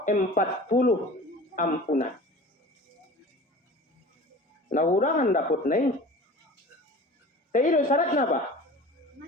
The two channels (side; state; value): both; normal; correlation 0.40